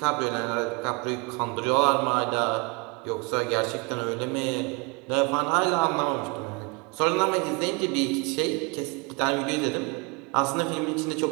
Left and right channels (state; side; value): quieter; left; 30.0 dB